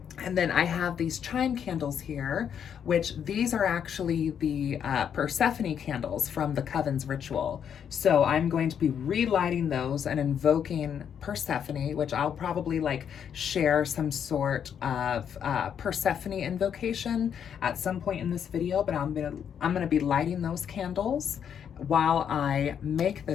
And then I have these chime candles here, which these are actually the Persephone candles from the Coven's ritual. So I'm going to be relighting those and invoking Persephone, which I'll probably like share some sort of Persephone invocation at some point in this video, but I'm gonna be lighting those candles while I make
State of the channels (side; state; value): right; quieter; 8.2 dB